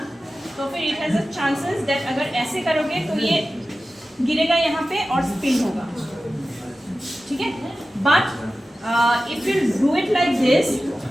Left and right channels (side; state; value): both; normal; correlation 0.94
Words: तो फिर it has a chances that अगर ऐसे करोगे तो ये गिरेगा यहाँ पे और स्पिन होगा, ठीक है? But if you do it like this